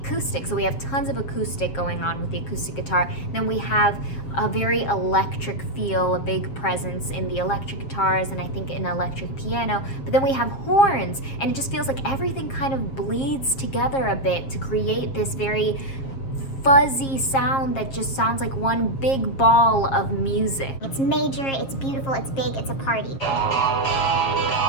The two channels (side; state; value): right; late; 7.4 ms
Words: So we have tons of acoustic going on with the acoustic guitar. Then we have a very electric feel, a big presence in the electric guitars, and I think an electric piano. But then we have horns, and it just feels like everything kind of bleeds together a bit to create this very fuzzy sound that just sounds like one big ball of music. It's major, it's beautiful, it's big, it's a party.